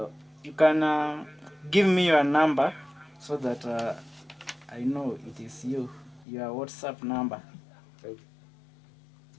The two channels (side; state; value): right; drops out; at 6.2 s